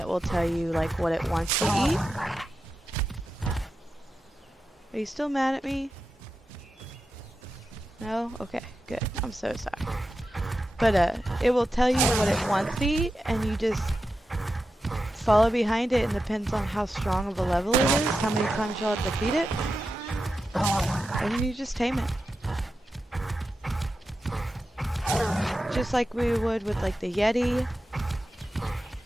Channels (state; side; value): normal; both; correlation 0.90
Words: will tell you like what it wants to eat. Are you still mad at me? No? Okay, good. I'm so sorry. But it will tell you what it wants to eat, and you just follow behind it, and depends on how strong of a level it is, how many times you'll have to feed it, and then you just tame it. Just like we would with like the Yeti